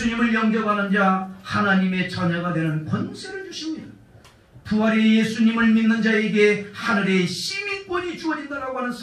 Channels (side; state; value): both; identical; correlation 1.00